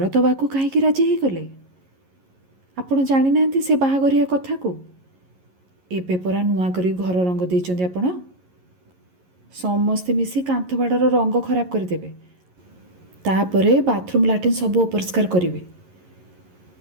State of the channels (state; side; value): late; left; 11 ms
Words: ଦେବାକୁ କାହିଁକି ରାଜି ହେଇଗଲେ? ଆପଣ ଜାଣିନାହାନ୍ତି ସେ ବାହାଘରିଆ କଥାକୁ? ଏବେ ପରା ନୂଆ କରି ଘର ରଙ୍ଗ ଦେଇଛନ୍ତି ଆପଣ। ସମସ୍ତେ ମିଶି କାନ୍ଥ ବାଡ଼ର ରଙ୍ଗ ଖରାପ କରିଦେବେ। ତାପରେ ବାଥରୁମ୍ ଲାଟ୍ରିନ୍ ସବୁ ଅପରିଷ୍କାର କରିବେ।